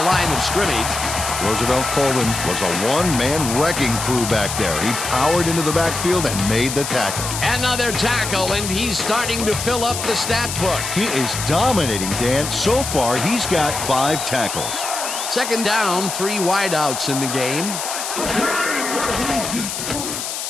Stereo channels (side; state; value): left; noise; hiss, 5 dB below the sound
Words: line of scrimmage. Roosevelt Colvin was a one-man wrecking crew back there. He powered into the backfield and made the tackle. Another tackle, and he's starting to fill up the stat book. He is dominating, Dan. So far, he's got 5 tackles. Second down, 3 wideouts in the game.